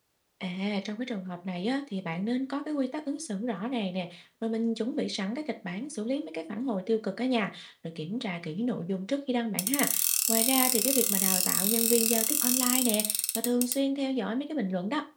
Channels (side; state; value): both; identical; correlation 1.00